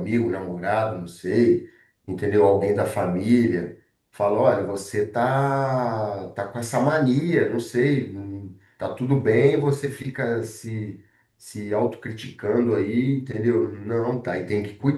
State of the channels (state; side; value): identical; both; correlation 1.00